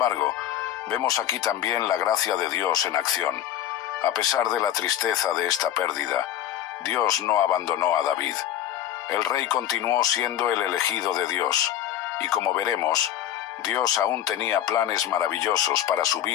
vemos aquí también la gracia de Dios en acción. A pesar de la tristeza de esta pérdida, Dios no abandonó a David. El rey continuó siendo el elegido de Dios, y como veremos, Dios aún tenía planes maravillosos para su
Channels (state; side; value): quieter; right; 11.4 dB